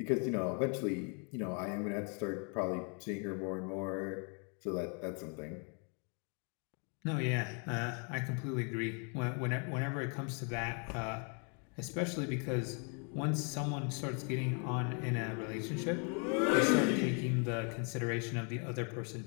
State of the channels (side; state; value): right; quieter; 38.4 dB